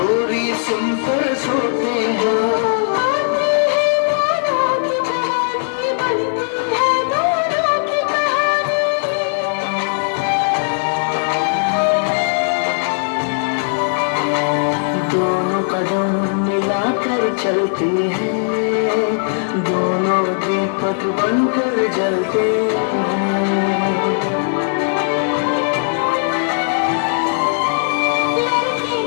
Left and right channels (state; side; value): silent; right; digital silence